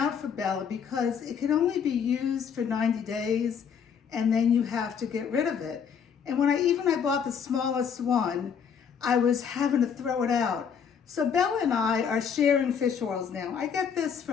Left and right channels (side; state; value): right; quieter; 7.2 dB